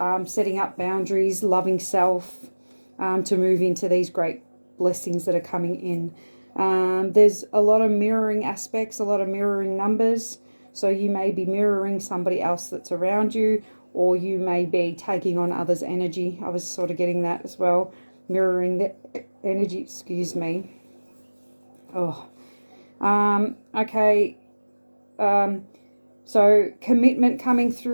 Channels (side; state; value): both; inverted; correlation -1.00